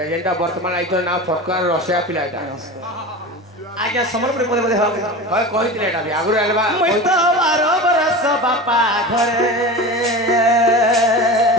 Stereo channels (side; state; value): both; normal; correlation 0.30